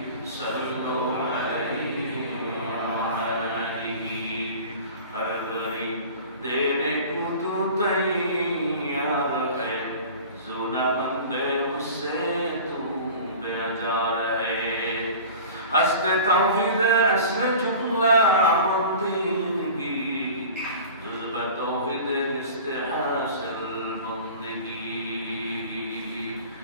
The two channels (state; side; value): inverted; both; correlation -0.40